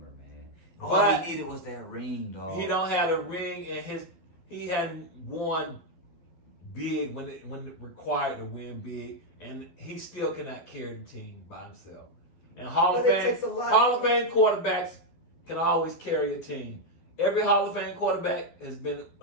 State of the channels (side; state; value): right; late; 12 ms